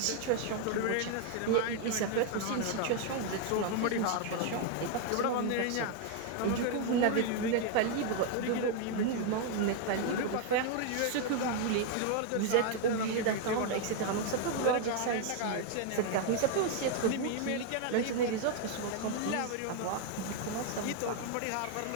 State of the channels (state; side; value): different; both; correlation 0.01